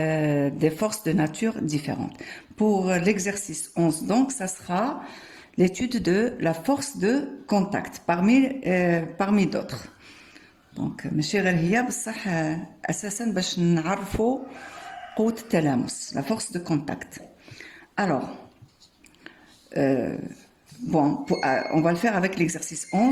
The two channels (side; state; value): both; identical; correlation 1.00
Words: forces de nature différentes. Pour l'exercice 11 donc ça sera l'étude de la force de contact parmi d'autres. Donc ماشي غير هي بصح اساسا باش نعرفوا قوة التلامس la force de contact. Alors bon, on va le faire avec l'exercice